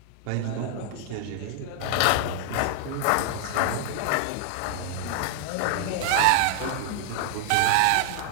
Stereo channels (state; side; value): different; both; correlation 0.00